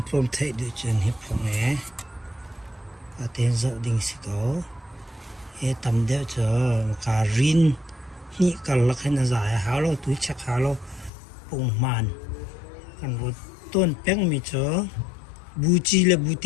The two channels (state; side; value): drops out; right; at 11.1 s